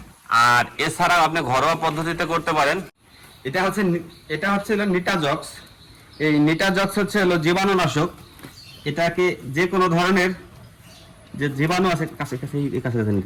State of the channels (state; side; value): identical; both; correlation 1.00